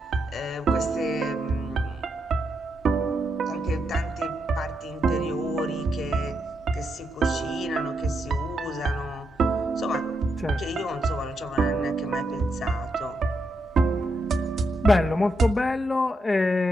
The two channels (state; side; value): normal; both; correlation 0.82